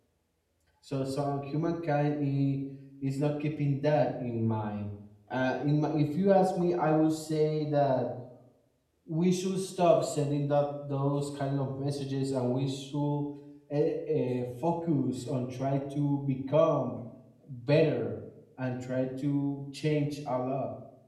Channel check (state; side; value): identical; both; correlation 1.00